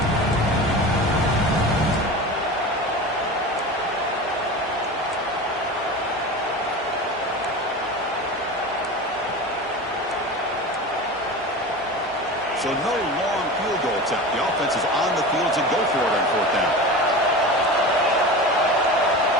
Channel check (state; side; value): normal; both; correlation 0.30